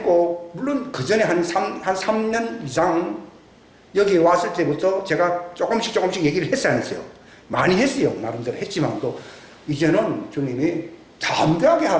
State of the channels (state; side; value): identical; both; correlation 1.00